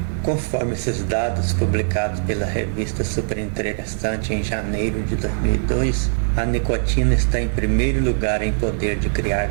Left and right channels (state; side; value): silent; left; 59 dB below the other